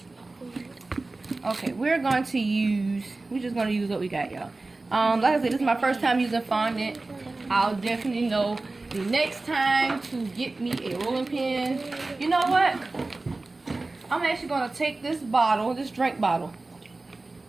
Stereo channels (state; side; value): quieter; left; 3.3 dB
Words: Okay, we're just gonna use what we got, y'all. Like I said, this is my first time using fondant. I'll definitely know the next time to get me a rolling pin. You know what? I'm actually gonna take this bottle, this drink bottle.